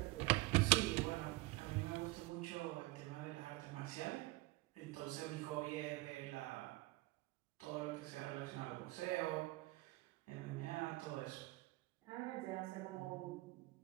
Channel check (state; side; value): quieter; left; 21.0 dB